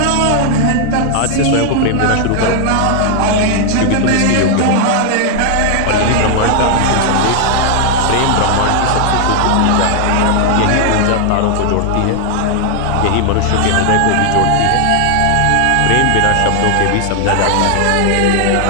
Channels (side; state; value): both; different; correlation 0.00